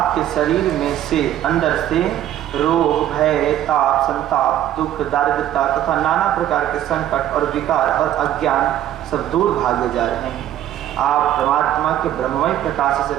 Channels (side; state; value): left; quieter; 12.0 dB